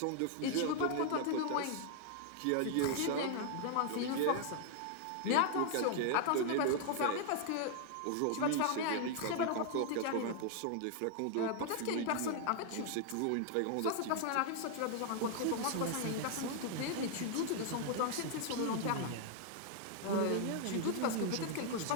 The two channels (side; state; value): both; different; correlation 0.00